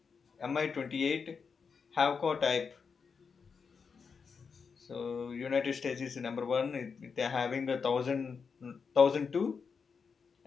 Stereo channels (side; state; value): right; quieter; 5.7 dB